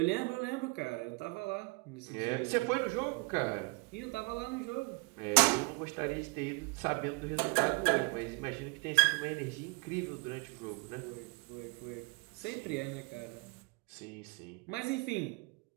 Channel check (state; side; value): quieter; left; 30.5 dB